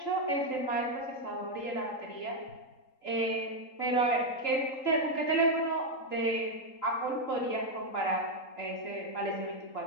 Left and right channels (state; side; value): late; right; 3.8 ms